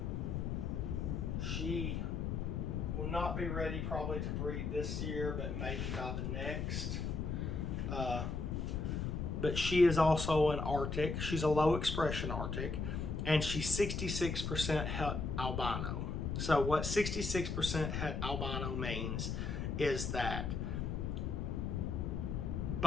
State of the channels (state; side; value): noise; left; rumble, 2 dB below the sound